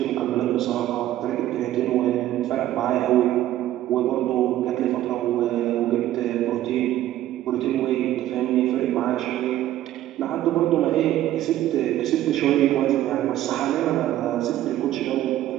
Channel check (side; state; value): left; quieter; 13.5 dB